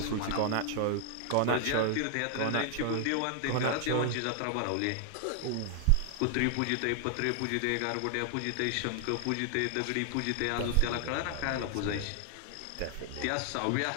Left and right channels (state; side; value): different; both; correlation 0.00